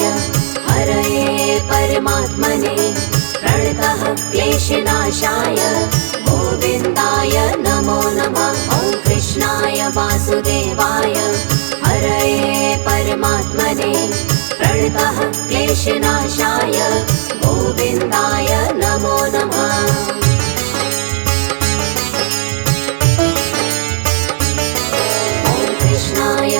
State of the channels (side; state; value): left; silent; digital silence